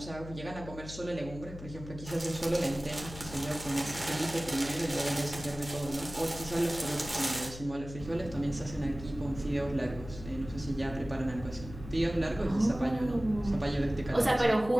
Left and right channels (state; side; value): noise; left; hum, 13 dB below the sound